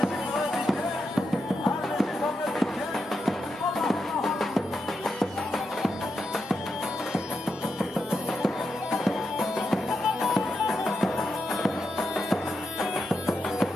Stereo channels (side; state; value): both; normal; correlation 0.86